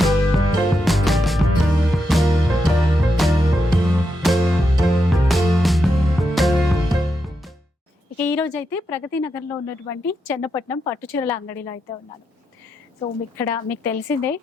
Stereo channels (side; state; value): both; normal; correlation 0.84